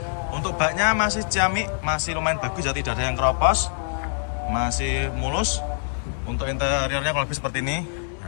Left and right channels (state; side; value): silent; right; 60 dB below the other